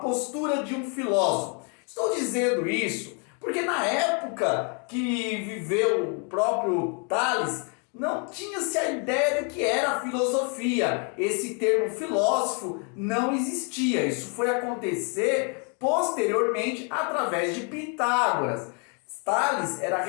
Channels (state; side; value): quieter; right; 37.8 dB